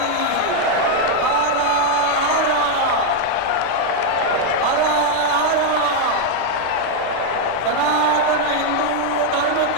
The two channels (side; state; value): both; different; correlation 0.00